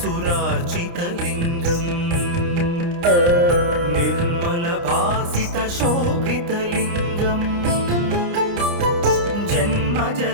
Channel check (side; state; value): left; late; 29 ms